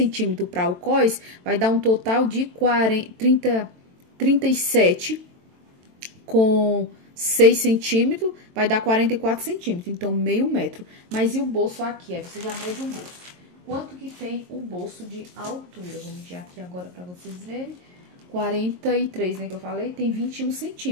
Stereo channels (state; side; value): late; left; 22 ms